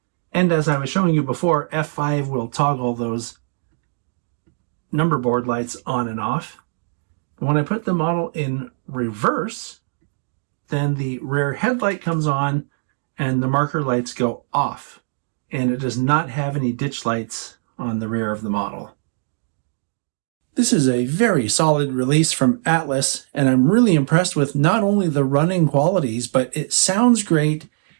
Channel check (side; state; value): left; silent; digital silence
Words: And as I was showing you before, F5 will toggle those number board lights on and off. When I put the model in reverse, then the rear headlight comes on and the marker lights go off. And it does not have any ditch lights on the rear of the model. This is a very solid release from Atlas, and I'm really impressed with not only the running qualities, but it sounds great,